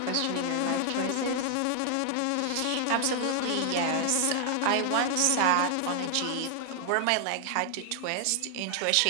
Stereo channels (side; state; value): both; different; correlation 0.00